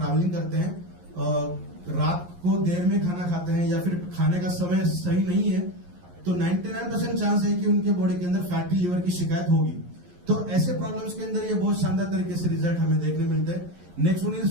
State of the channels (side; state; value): left; late; 11 ms